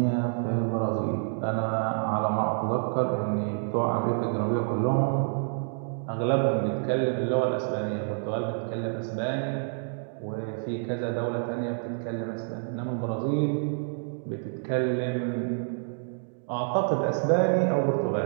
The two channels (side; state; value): left; silent; digital silence